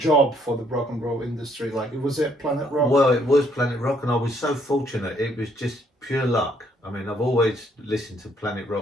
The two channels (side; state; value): both; normal; correlation 0.68